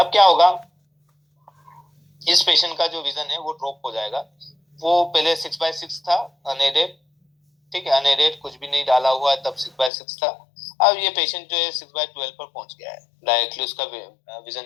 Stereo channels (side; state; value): right; drops out; at 9.9 s